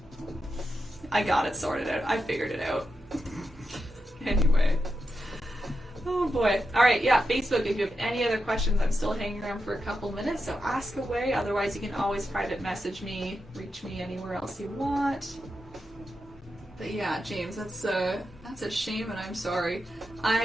I got it sorted out. I figured it out. Anyway. Oh boy. Alright, yeah, Facebook, if you have any other questions, I'm still hanging around for a couple minutes, so ask away. Otherwise, you can always private message me, reach me anywhere else you want. But yeah, James, that's a shame, and I'm sorry.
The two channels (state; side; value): normal; both; correlation 0.88